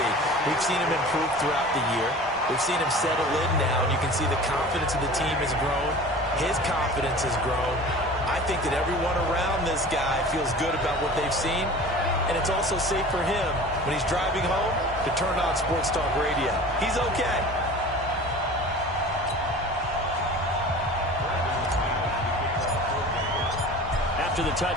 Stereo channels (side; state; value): both; normal; correlation 0.40